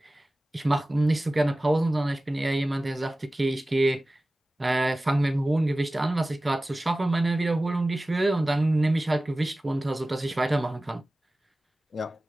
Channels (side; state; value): both; normal; correlation 0.97